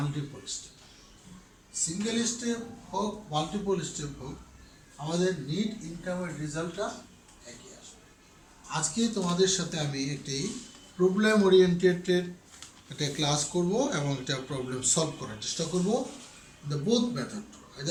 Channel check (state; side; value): identical; both; correlation 1.00